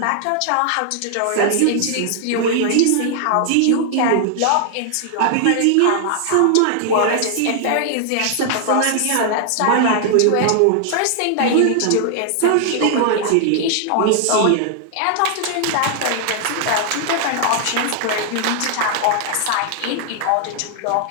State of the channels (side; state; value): both; different; correlation 0.00